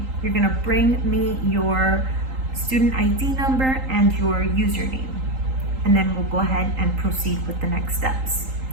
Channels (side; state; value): left; late; 3.8 ms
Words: You're gonna bring me your student ID number and your username, and then we'll go ahead and proceed with the next steps.